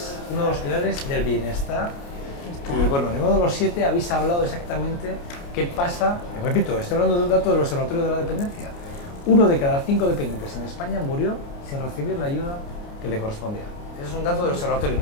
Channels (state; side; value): late; right; 29 ms